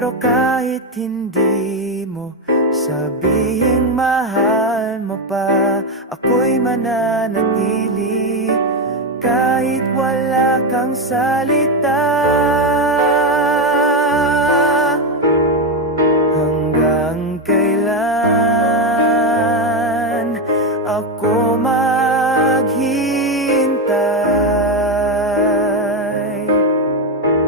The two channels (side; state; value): both; normal; correlation 0.09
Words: kahit hindi mo sabihing mahal mo pa, ako'y mananatili kahit wala kang salita. Hanggang kailan ako maghihintay?